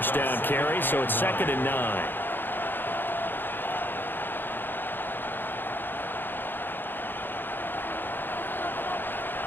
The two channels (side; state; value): right; late; 0.096 ms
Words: down carry, so it's 2nd and 9.